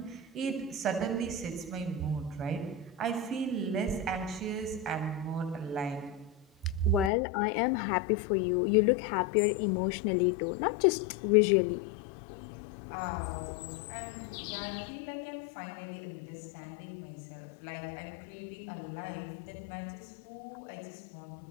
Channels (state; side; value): drops out; right; at 7.1 s